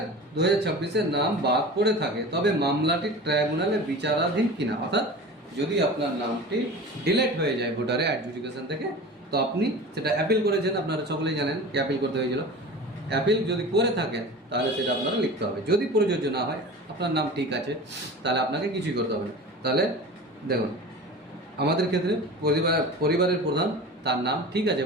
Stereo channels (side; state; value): both; normal; correlation 0.35